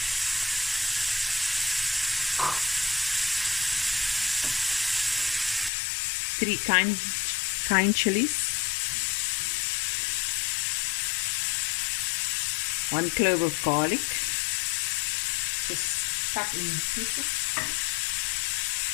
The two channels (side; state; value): right; drops out; at 5.7 s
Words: 3 kind chilies, 1 clove of garlic, just cut in pieces.